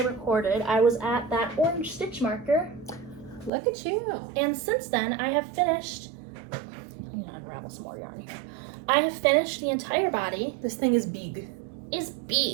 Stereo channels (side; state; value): left; drops out; at 3.5 s